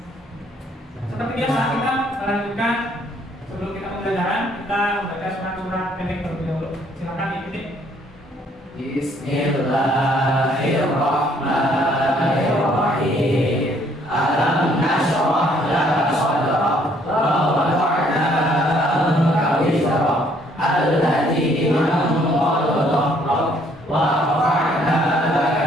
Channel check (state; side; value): normal; both; correlation 0.64